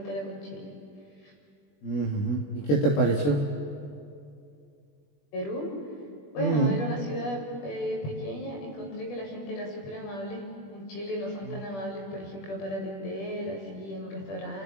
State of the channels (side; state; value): right; late; 21 ms